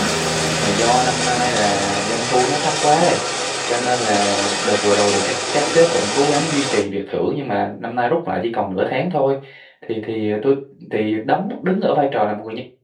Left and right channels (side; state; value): both; identical; correlation 1.00